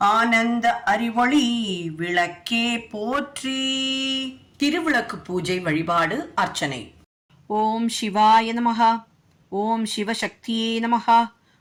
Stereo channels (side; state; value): both; identical; correlation 1.00